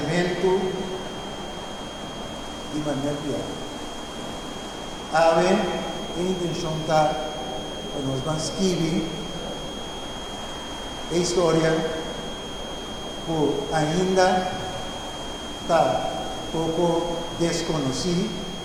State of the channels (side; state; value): both; identical; correlation 1.00